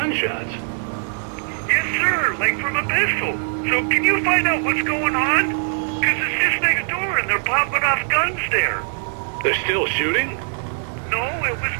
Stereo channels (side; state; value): left; silent; 61 dB below the other